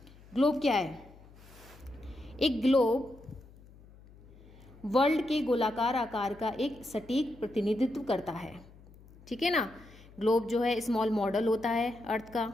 Globe क्या है? एक globe world के गोलाकार आकार का एक सटीक प्रतिनिधित्व करता है। ठीक है ना, ग्लोब जो है स्मॉल मॉडल होता है अर्थ का,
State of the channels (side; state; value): left; noise; hum, 23 dB below the sound